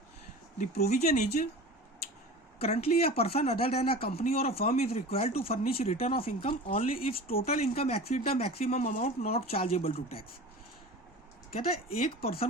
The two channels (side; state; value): both; normal; correlation 0.35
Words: The provision is currently a person other than a company or a firm is required to furnish return of income only if total income exceed the maximum amount not chargeable to tax। कहता है एक